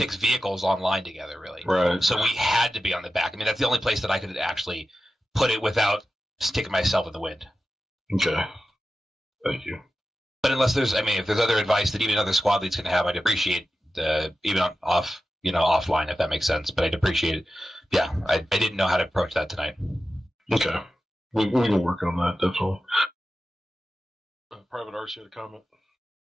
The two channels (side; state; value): both; normal; correlation 0.93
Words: vehicles online together, really. Right. So we had to be on the back. I mean, that's the only place that I could actually put it without sticking myself in the wind. Okay. Thank you. But if there's other advice that even other squad leads can have, I'd appreciate even offline, if that makes sense. But I'd appreciate it. Yeah, I didn't know how to approach that tonight. Okay. We can work on that, definitely. Private RC had a comment.